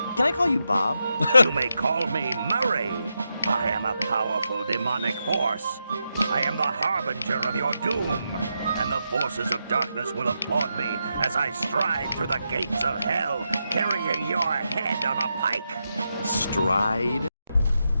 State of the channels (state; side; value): inverted; both; correlation -0.86